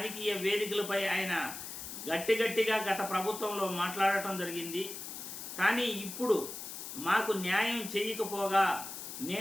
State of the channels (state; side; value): noise; left; hiss, 9 dB below the sound